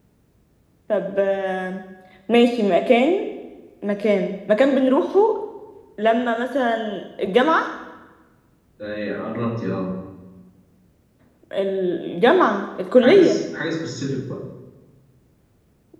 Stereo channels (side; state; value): both; identical; correlation 1.00